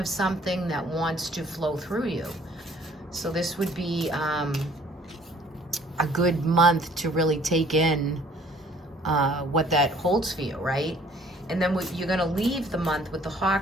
something that wants to flow through you. So this would be a good month to really take in what that holds for you, right? And then you're going to leave the month with the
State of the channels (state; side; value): normal; both; correlation 0.56